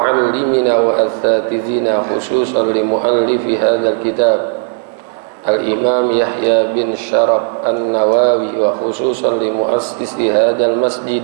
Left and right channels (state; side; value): silent; left; 70 dB below the other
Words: wa asatizina khususan li muallifi hadzal kitab Al-Imam Yahya bin Sharaf An-Nawawi wa khususan li muassisi hadzal